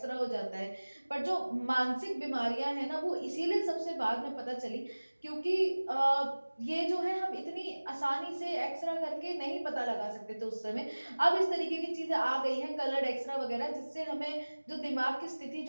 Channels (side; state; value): both; inverted; correlation -1.00